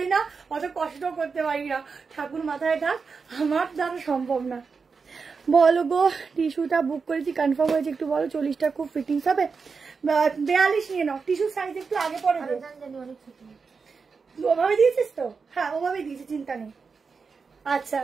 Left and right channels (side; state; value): left; quieter; 5.1 dB